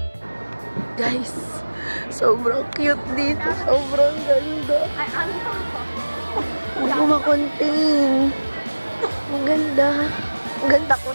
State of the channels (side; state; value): both; inverted; correlation -1.00